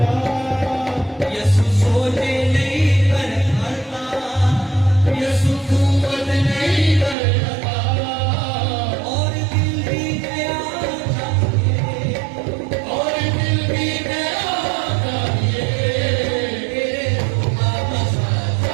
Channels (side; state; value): left; drops out; at 7.2 s